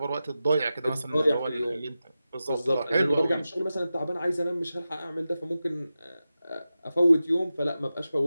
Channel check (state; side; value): inverted; both; correlation -0.93